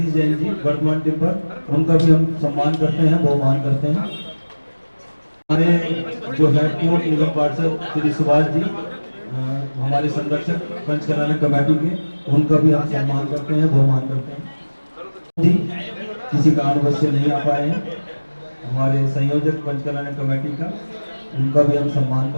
जैन जी वर्तमान टिम्बर, उनका भी हम सम्मान करते हैं, बहुमान करते हैं। हमारे जो है पूर्व निगम पार्षद श्री सुभाष जी हमारे संरक्षक पंचकल्याण कमेटी के, उनका भी हम सम्मान करते हैं, बहुमान करते हैं जी। किसी कारणवश से नहीं आ पाए हैं हमारे संयोजक पंचकल्याण कमेटी का, उनका भी हम सम्मान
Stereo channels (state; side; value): inverted; both; correlation -1.00